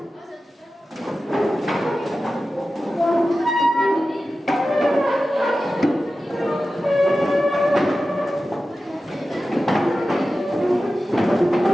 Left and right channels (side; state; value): both; normal; correlation 0.94